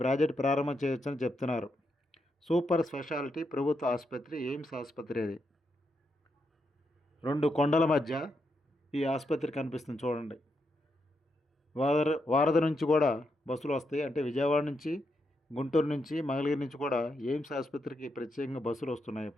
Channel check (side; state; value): both; normal; correlation 0.82